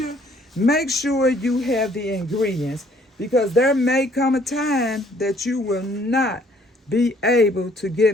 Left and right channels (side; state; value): both; normal; correlation 0.61